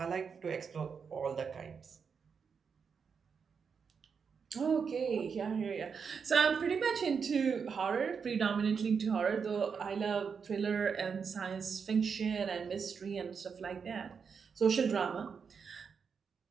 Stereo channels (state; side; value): quieter; left; 6.1 dB